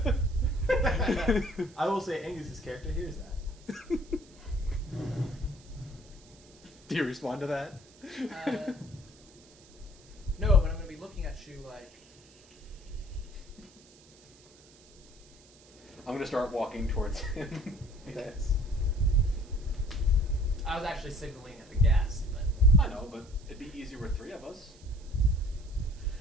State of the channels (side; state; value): right; noise; hiss, 25 dB below the sound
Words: I will say Angus's character hears that. Do you respond to that? No, but I'm going to be looking at you like... I'm gonna start walking towards him. Okay. I was actually signaling at the ghast, but... I know, but it'd be easier with three of us.